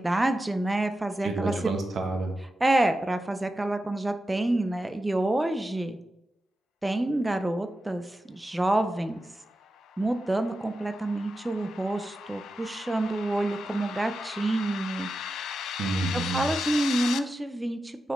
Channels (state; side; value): normal; both; correlation 0.91